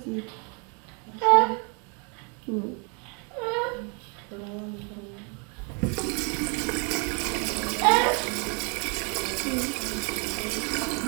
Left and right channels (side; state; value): left; quieter; 35.6 dB